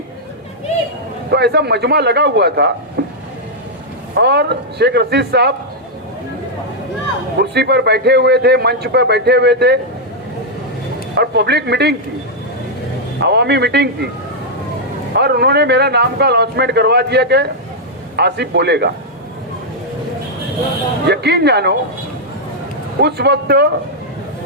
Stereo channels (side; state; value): both; normal; correlation -0.04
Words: तो ऐसा मजमा लगा हुआ था और शेख रशीद साहब कुर्सी पर बैठे हुए थे, मंच पर बैठे हुए थे और पब्लिक मीटिंग थी, अवामी मीटिंग थी, और उन्होंने मेरा नाम का अनाउंसमेंट करवा दिया कि आसिफ बोलेगा। यकीन जानो, उस वक्त